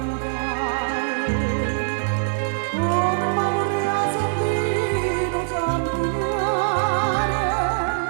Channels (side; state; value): left; silent; 64 dB below the other